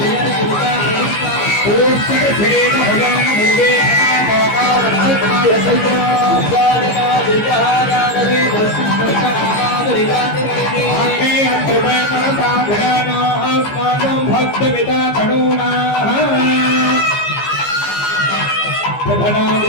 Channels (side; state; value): right; late; 15 ms